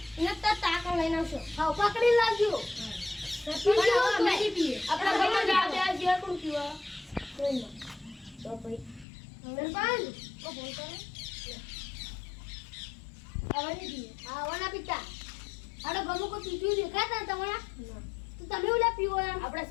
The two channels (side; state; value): right; drops out; at 9.1 s